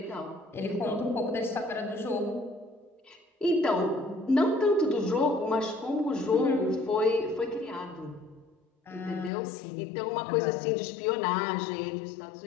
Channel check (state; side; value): drops out; right; at 9.3 s